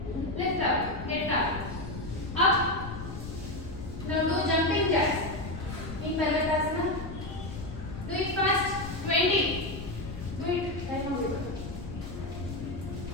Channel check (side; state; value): left; noise; rumble, 9 dB below the sound